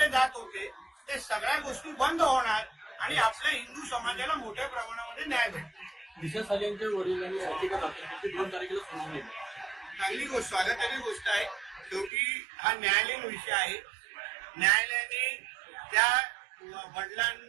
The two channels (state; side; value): drops out; left; at 12.1 s